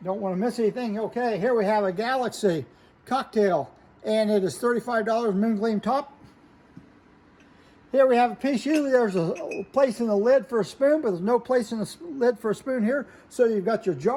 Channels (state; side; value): identical; both; correlation 1.00